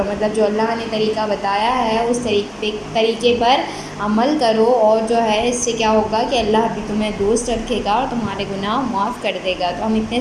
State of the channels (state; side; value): identical; both; correlation 1.00